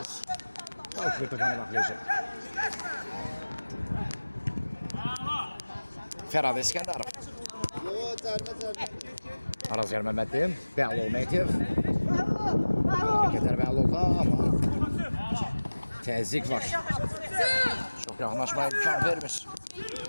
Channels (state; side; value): inverted; both; correlation -1.00